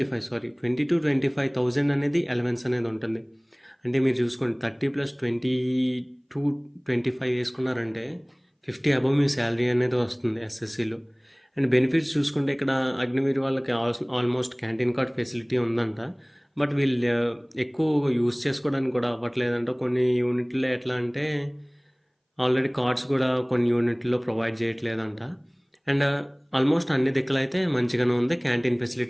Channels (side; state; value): both; identical; correlation 1.00